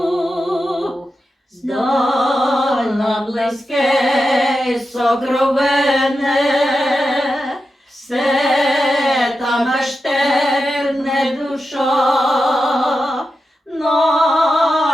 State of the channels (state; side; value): normal; both; correlation 0.90